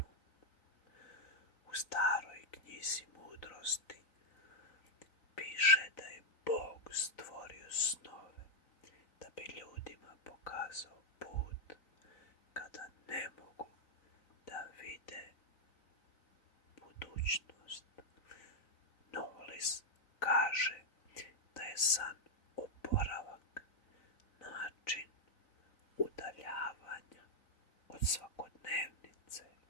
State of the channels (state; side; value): late; right; 3.9 ms